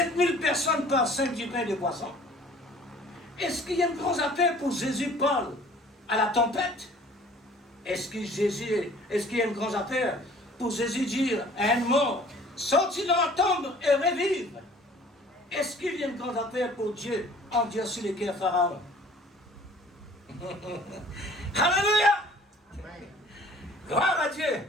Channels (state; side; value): normal; both; correlation 0.51